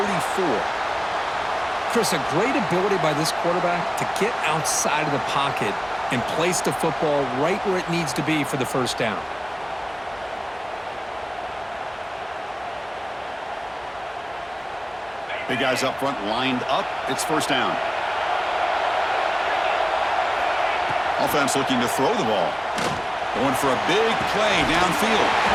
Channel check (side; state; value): both; identical; correlation 1.00